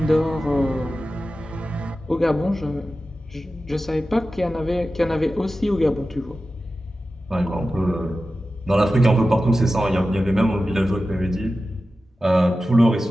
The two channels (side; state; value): both; normal; correlation 0.94